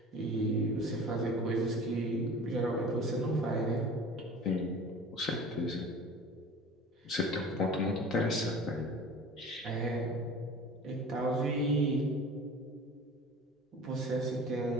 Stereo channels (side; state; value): both; normal; correlation 0.40